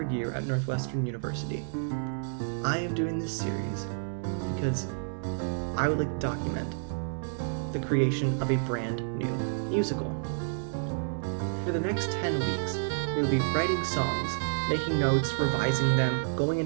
year at Northwestern University. I am doing this series because I would like to document the creation of a brand new musical. For the next 10 weeks, we will be writing songs, making notes, revising them, going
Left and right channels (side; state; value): left; silent; digital silence